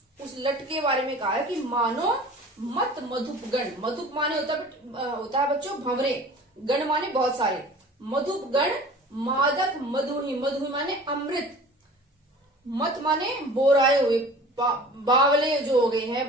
उस लट के बारे में कहा है कि मानो मत मधुपगण। मधुप माने होता है बच्चों भंवरे, गण माने बहुत सारे, मधुपगण मादक मधुही, मधुही माने अमृत, मत माने बोराए हुए, बावले जो हो गए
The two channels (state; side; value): normal; both; correlation 0.43